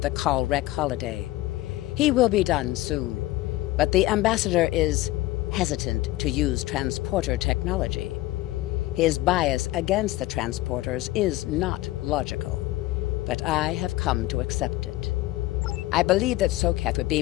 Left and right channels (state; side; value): quieter; right; 17.5 dB